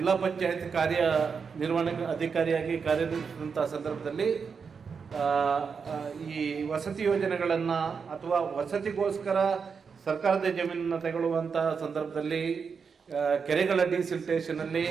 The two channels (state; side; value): quieter; left; 5.8 dB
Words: ಪಂಚಾಯತ್ ಕಾರ್ಯನಿರ್ವಹಣೆ ಅಧಿಕಾರಿಯಾಗಿ ಕಾರ್ಯನಿರ್ವಹಿಸಿದಂಥ ಸಂದರ್ಭದಲ್ಲಿ ಈ ವಸತಿ ಯೋಜನೆಗಳನ್ನು ಅಥವಾ ವಸತಿಗೋಸ್ಕರ ಸರ್ಕಾರದ ಜಮೀನನ್ನು ತಗೊಳ್ಳುವಂಥ ಸಂದರ್ಭದಲ್ಲಿ ಕೆರೆಗಳ ಡಿಸಿಲ್ಟೇಷನಲ್ಲಿ